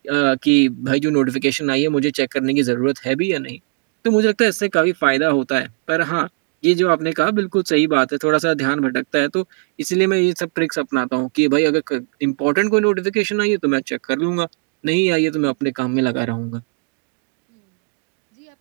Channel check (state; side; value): quieter; left; 37.9 dB